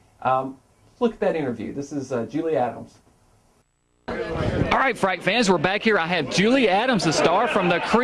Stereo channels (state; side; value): identical; both; correlation 1.00